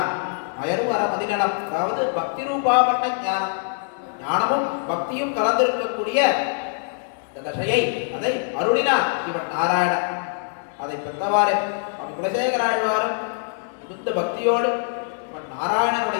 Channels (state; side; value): silent; right; digital silence